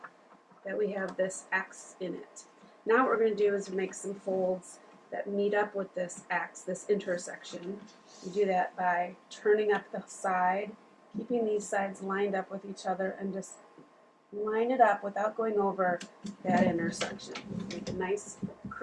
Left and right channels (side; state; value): both; identical; correlation 1.00